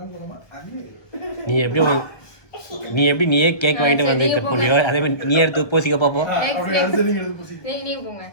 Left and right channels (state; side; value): late; right; 1.2 ms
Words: அது நீயே கேக் வாங்கிட்டு வந்து கட் பண்ணியோ அதே மாதிரி நீ எடுத்து பூசிக்க பாப்போம் நீங்க போங்க